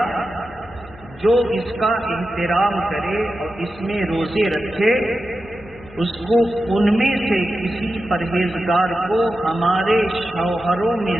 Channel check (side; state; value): left; noise; hum, 23 dB below the sound